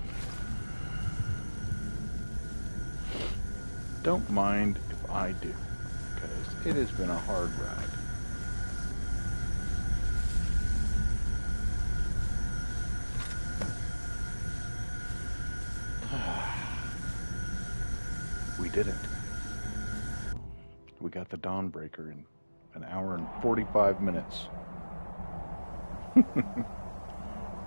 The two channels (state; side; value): inverted; both; correlation -1.00